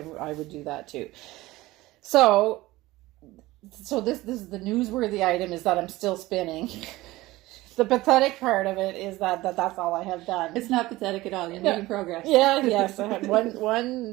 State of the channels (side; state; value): left; quieter; 18.6 dB